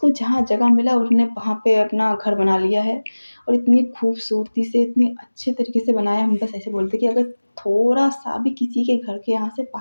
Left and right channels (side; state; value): both; inverted; correlation -1.00